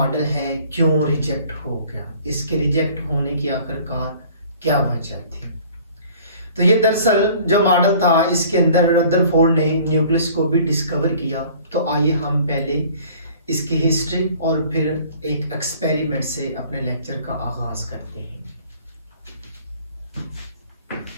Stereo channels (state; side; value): inverted; both; correlation -0.51